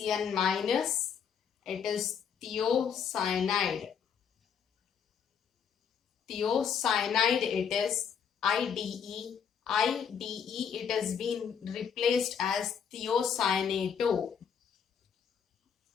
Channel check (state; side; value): quieter; right; 7.3 dB